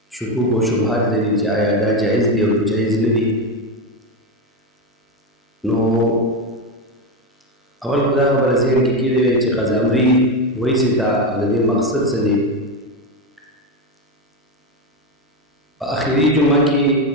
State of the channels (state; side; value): normal; both; correlation 0.12